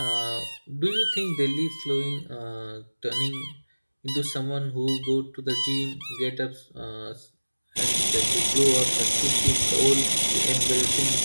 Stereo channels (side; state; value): both; inverted; correlation -1.00